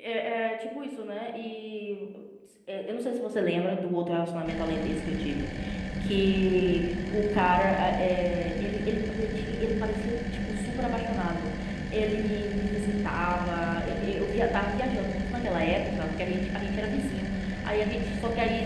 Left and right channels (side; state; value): both; identical; correlation 1.00